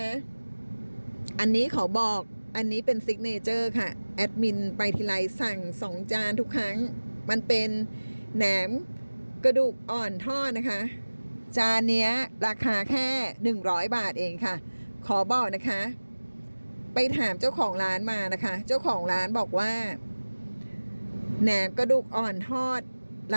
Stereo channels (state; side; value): inverted; both; correlation -1.00